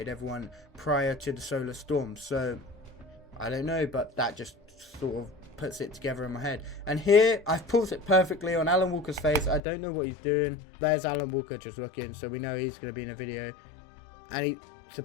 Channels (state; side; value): drops out; right; at 9.6 s